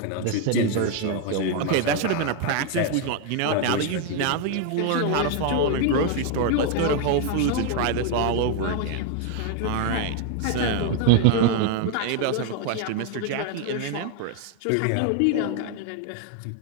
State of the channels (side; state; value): both; different; correlation 0.01